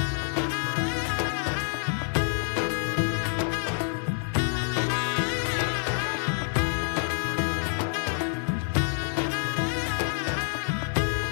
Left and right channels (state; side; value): silent; right; 60 dB below the other